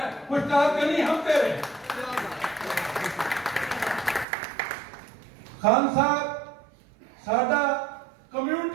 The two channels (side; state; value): left; drops out; at 4.2 s